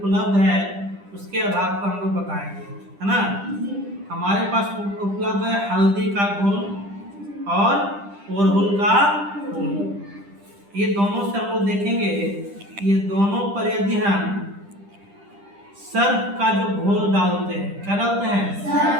है उसके आधार पर हम लोग बताएंगे, है ना। हमारे पास उपलब्ध है हल्दी का घोल और अड़हुल का फूल। ये दोनों से हम लोग देखेंगे, ये दोनों पर यदि हम सर्फ का जो घोल डालते हैं, क्या डालते हैं,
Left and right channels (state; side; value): late; left; 10 ms